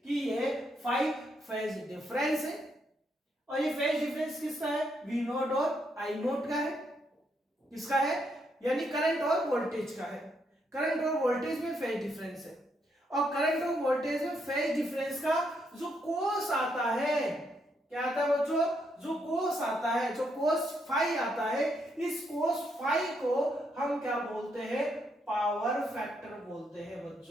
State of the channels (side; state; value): both; normal; correlation 0.77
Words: कि ये फाई फेज डिफरेंस है। और ये फेज डिफरेंस किसका है, V नोट और I नोट का है। किसका है, यानी करंट और वोल्टेज का है। करंट और वोल्टेज में फेज डिफरेंस है, और करंट और वोल्टेज में फेज डिफरेंस का जो कोस आता है, क्या आता है बच्चों, जो कोस आता है, जो कोस फाई आता है, इस कोस फाई को हम क्या बोलते हैं, पावर फैक्टर बोलते हैं